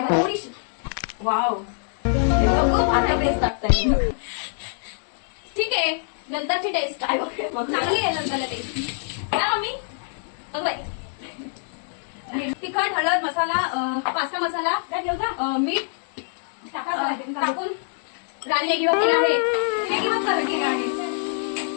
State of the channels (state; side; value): silent; right; 62 dB below the other